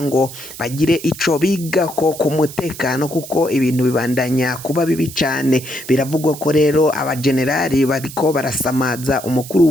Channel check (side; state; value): right; noise; hiss, 14 dB below the sound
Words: ngo bagire ico bigako ku mutekano kuko ibintu bibandanya kuba bibi cane. Biravugwa ko rero abagenerali bariko barasamaza umukuru